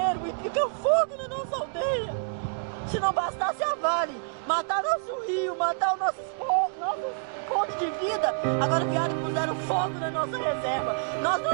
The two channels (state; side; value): silent; left; digital silence